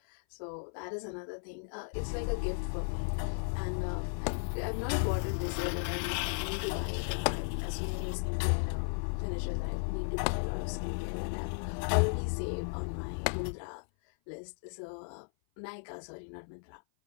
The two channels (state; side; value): silent; right; 54 dB below the other